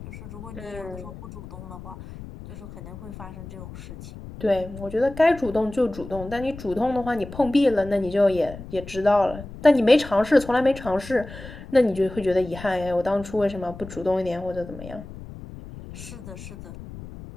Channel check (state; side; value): noise; left; rumble, 14 dB below the sound